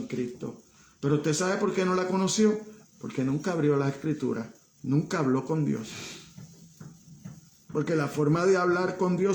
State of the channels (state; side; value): identical; both; correlation 1.00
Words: Cristo. Pero usted sabe por qué no la conoció, porque nunca abrió la Escritura, nunca habló con Dios. Porque la forma de hablar con